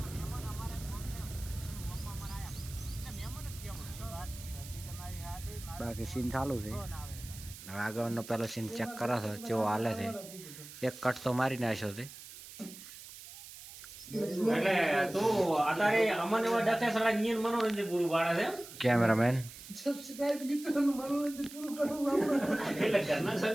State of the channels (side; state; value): right; noise; hiss, 15 dB below the sound